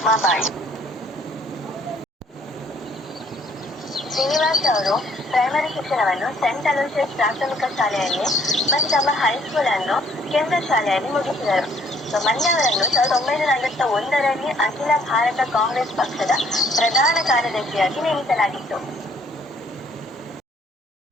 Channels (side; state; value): both; normal; correlation 0.63